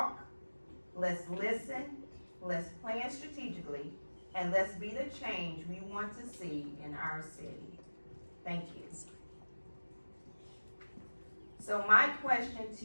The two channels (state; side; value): inverted; both; correlation -1.00